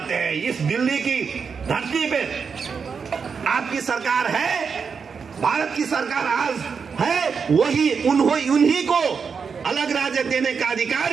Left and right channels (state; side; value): quieter; left; 5.8 dB